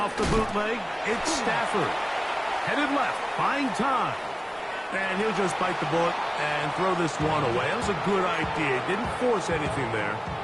the bootleg, it's Stafford. Headed left, buying time. And he'll just bite the bullet and throw this one away. That was a good idea. Didn't force anything there.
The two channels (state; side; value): identical; both; correlation 1.00